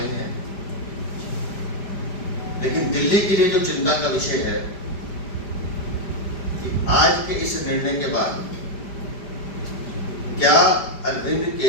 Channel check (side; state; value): right; late; 5.0 ms